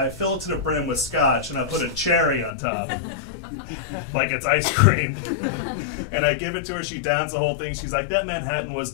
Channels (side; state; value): right; drops out; at 2.5 s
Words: fill it to the brim with scotch, and I put a cherry on top, like it's ice cream. And I give it to her, she downs the whole thing. She's like, that Manhattan was